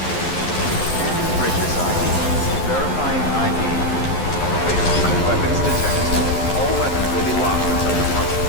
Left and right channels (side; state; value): right; late; 11 ms